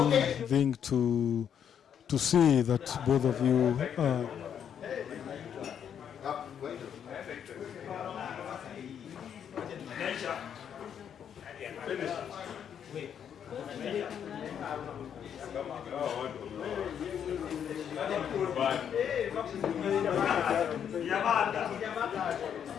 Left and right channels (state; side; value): quieter; right; 8.5 dB